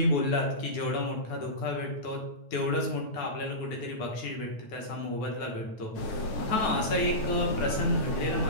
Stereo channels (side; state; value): right; late; 9.2 ms